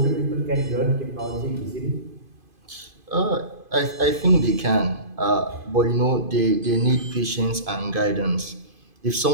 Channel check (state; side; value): late; left; 2.5 ms